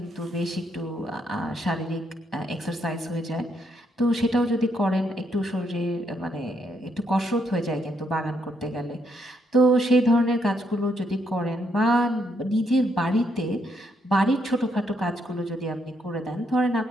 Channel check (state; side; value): normal; both; correlation 0.75